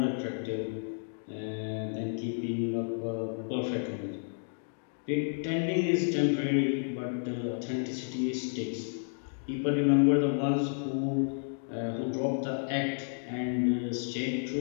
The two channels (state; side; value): silent; right; digital silence